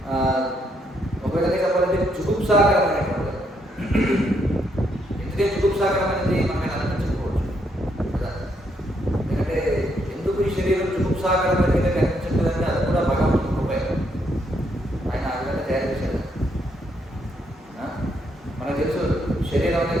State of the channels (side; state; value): both; normal; correlation 0.74